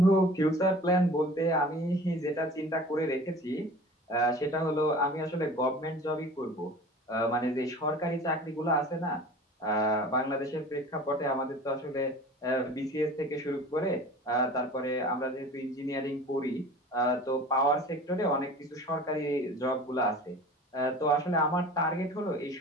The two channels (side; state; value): both; normal; correlation 0.41